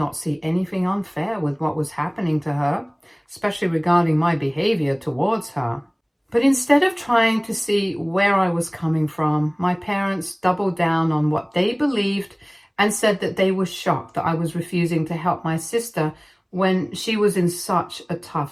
see anything unfair with what was happening to her, especially regarding my behavior towards her. But instead of trying to see where I was coming from, my parents doubled down on what they believed and said that they were shocked that I was refusing to help my sister when she was in such a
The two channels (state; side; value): identical; both; correlation 1.00